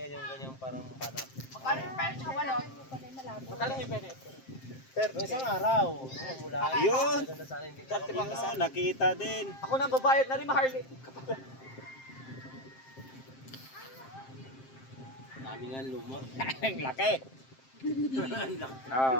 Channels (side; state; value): right; late; 7.6 ms